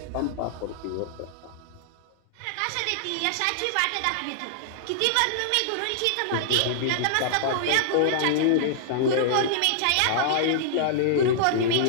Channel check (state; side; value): different; both; correlation -0.01